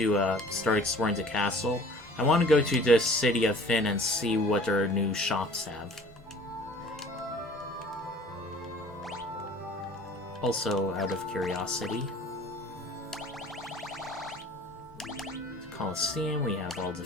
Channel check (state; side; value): normal; both; correlation 0.48